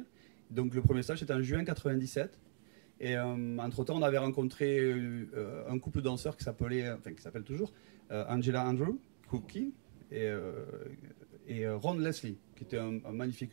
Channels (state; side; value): silent; left; digital silence